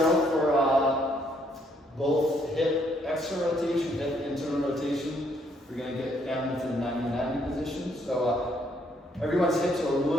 for both hip external rotation, hip internal rotation. We're going to get down into the 90-90 position. So everyone's hips are a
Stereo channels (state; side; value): normal; both; correlation 0.70